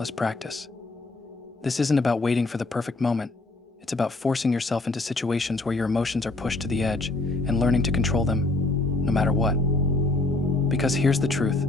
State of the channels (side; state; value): right; quieter; 3.0 dB